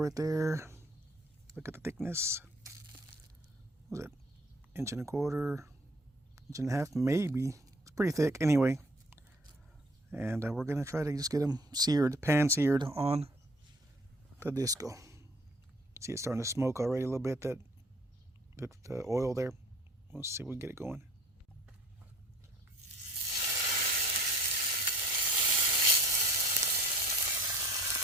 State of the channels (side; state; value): both; normal; correlation 0.52